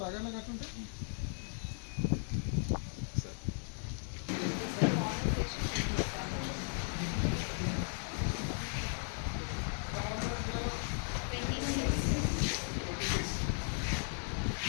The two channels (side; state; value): right; silent; 53 dB below the other